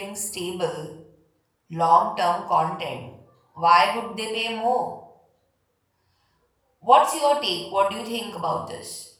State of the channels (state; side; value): identical; both; correlation 1.00